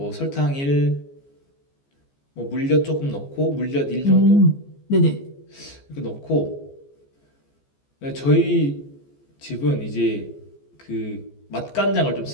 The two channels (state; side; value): late; right; 14 ms